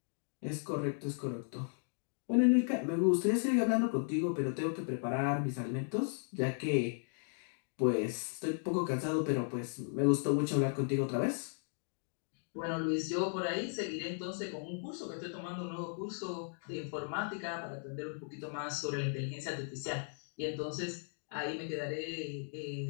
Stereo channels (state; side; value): silent; right; digital silence